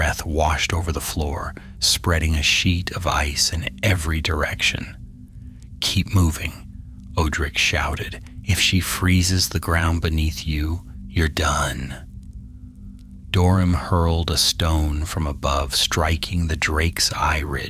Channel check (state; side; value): identical; both; correlation 1.00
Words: washed over the floor, spreading a sheet of ice in every direction. "Keep moving," Odric shouted. "If she freezes the ground beneath you, you're done." Dorum hurled a stone from above, striking the drake's eye